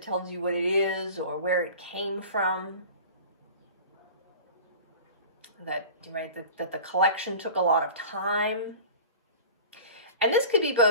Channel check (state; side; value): inverted; both; correlation -0.39